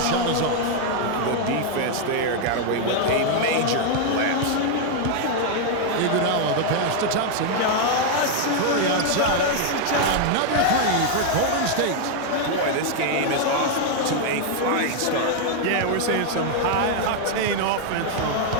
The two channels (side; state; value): both; different; correlation 0.00